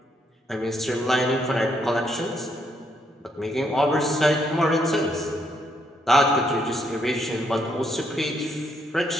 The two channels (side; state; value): both; normal; correlation 0.74